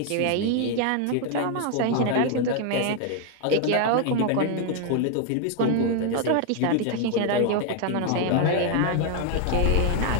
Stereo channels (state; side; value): different; both; correlation 0.00